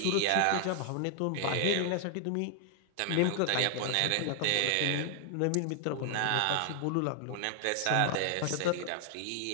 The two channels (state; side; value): different; both; correlation 0.00